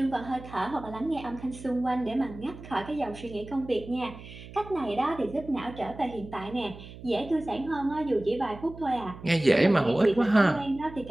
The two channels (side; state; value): right; noise; hum, 16 dB below the sound